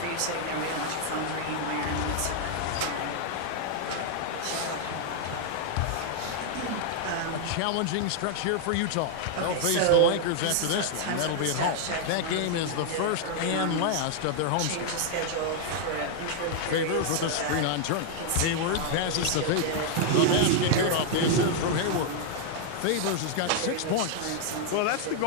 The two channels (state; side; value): different; both; correlation 0.00